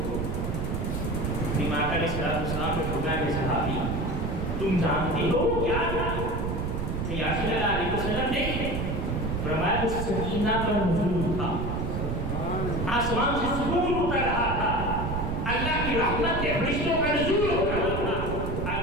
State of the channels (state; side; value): noise; right; rumble, 2 dB below the sound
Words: امام علیہ السلام نے فرمایا کہ صحابی تم جانتے ہو کیا تھا؟ کہ یا رسول اللہ علیہ وسلم نے فرمایا کہ سکینہ کا نزول تھا، آسمان سے سکون اتر رہا تھا، اللہ کی رحمت کے فرشتوں کا نزول ہو رہا تھا.